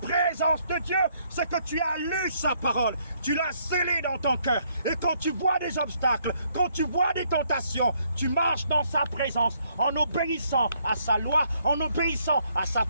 de Dieu, c'est que tu as lu sa parole. Tu l'as scellée dans ton cœur. Et quand tu vois des obstacles, quand tu vois des tentations, tu marches dans sa présence en obéissant à sa loi, en obéissant à sa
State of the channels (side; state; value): both; inverted; correlation -0.69